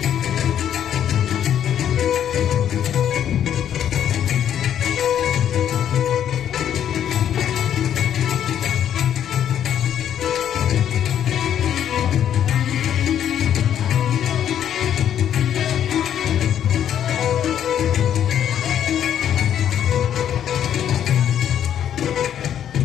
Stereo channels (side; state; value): right; quieter; 9.9 dB